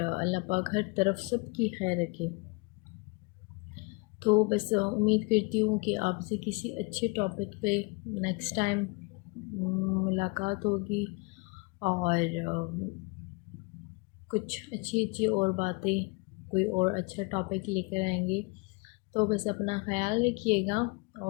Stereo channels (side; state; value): right; quieter; 28.8 dB